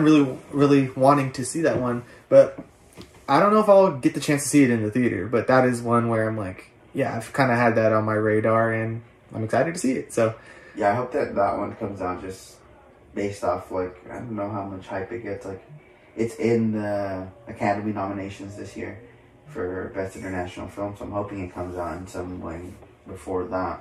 really, really wanting to see that one, but I don't know if I'll get the chance to see it in the theater, but that is one where I'm like, yeah, I've kind of had that on my radar, and I'm excited to see it, so. Yeah, I hope that one comes out just based off, like, I don't know how much hype it gets. Like, it's in the Academy nominations this year for Best International Film, so I'm hoping it comes out in some way before that.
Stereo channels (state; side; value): identical; both; correlation 1.00